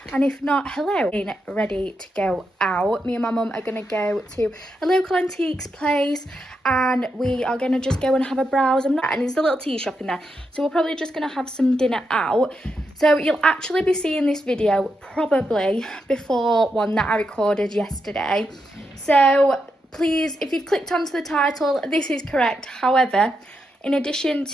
and if not, hello. Ready to go out. Me and my mum are going to go to a local antiques place and we are going to just go and have a browse. And there's a little tea shop in there, so we're probably just going to have some dinner out. So you'll actually be seeing this video probably before one that I recorded yesterday. So please, if you've clicked onto the title, this is correct. However, in addition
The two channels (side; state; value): both; normal; correlation 0.84